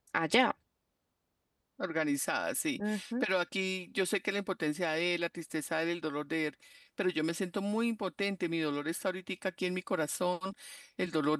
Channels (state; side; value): identical; both; correlation 1.00